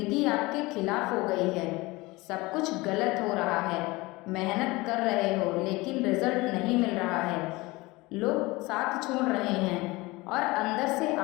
आपके खिलाफ हो गई है, सब कुछ गलत हो रहा है, मेहनत कर रहे हो लेकिन रिजल्ट नहीं मिल रहा है, लोग साथ छोड़ रहे हैं और अंदर से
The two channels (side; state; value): right; quieter; 22.1 dB